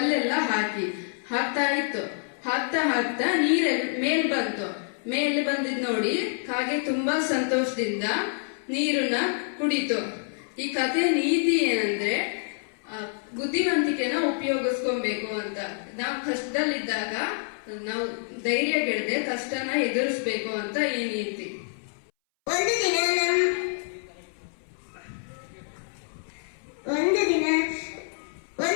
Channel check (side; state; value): right; silent; 60 dB below the other